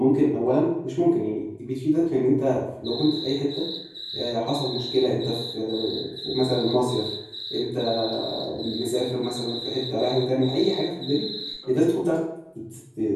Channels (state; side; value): identical; both; correlation 1.00